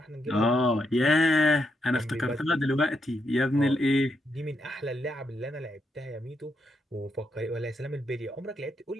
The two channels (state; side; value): normal; both; correlation 0.80